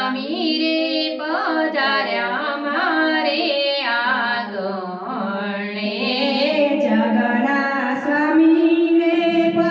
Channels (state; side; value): identical; both; correlation 1.00